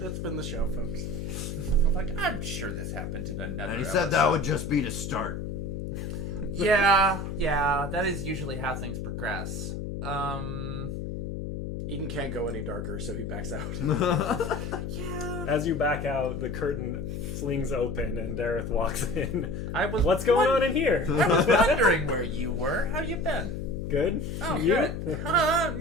that's been the show, folks. I'm like, I'm sure this happened in another And he said that would just be to start. Yeah, that is usually how things progress. Eden can't go any darker, so he backs out. Yeah. As you back out, the curtain flings open and Dareth walks in. I was What's going on in here? I was wondering where you were. How you been? Good? Oh, You? good. I'm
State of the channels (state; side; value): noise; left; hum, 5 dB below the sound